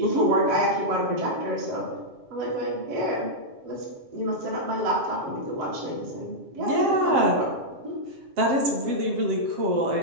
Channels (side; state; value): left; late; 7.5 ms